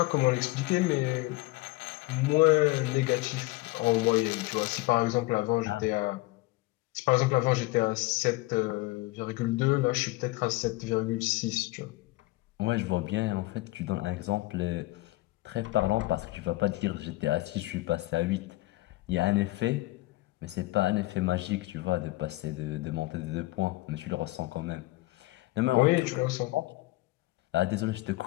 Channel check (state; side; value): quieter; right; 20.5 dB